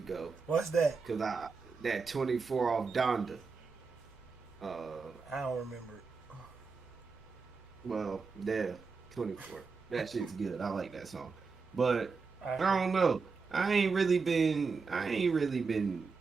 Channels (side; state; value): left; quieter; 4.8 dB